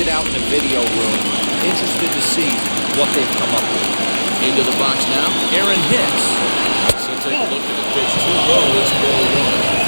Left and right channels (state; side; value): inverted; both; correlation -1.00